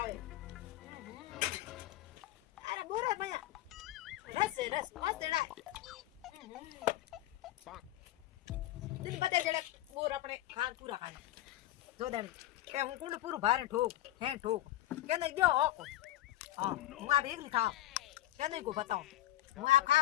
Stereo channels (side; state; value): right; quieter; 14.5 dB